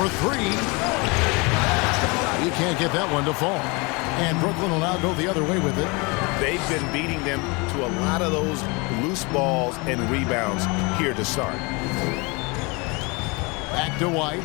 3. He can't get that one to fall. And Brooklyn will now go the other way with it. They've been beating them to a lot of those loose balls and rebounds here to start. Back to White.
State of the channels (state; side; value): quieter; right; 28.2 dB